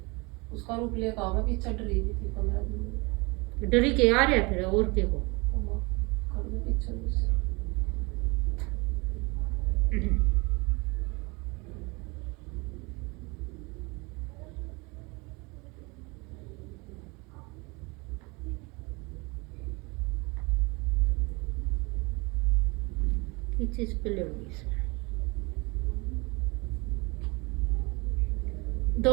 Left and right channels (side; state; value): left; quieter; 27.1 dB